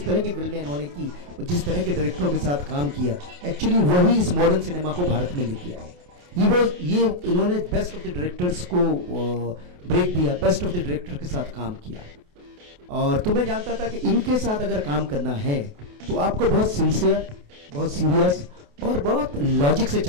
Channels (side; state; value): left; late; 28 ms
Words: तरह की फिल्में इन्होंने की, जिस तरह के डायरेक्टरों के साथ काम किया, एक्चुअली वही इस मॉडर्न सिनेमा को भारत में लेके आए। ये इन्होंने बेस्ट ऑफ द डायरेक्टर्स को ब्रेक दिया, बेस्ट ऑफ द डायरेक्टर के साथ काम किया। और तो मैं जानता था कि इनके साथ अगर काम करना है तो आपको बहुत सिंसियर, बहुत सीरियस और बहुत लॉजिक से